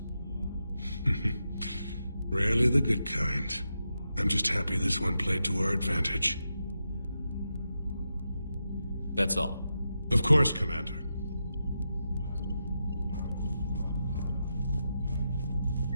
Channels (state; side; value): inverted; both; correlation -0.87